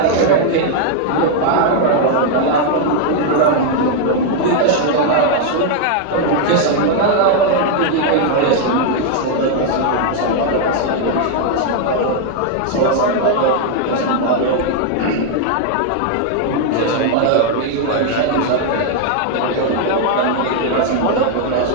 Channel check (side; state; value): both; different; correlation 0.00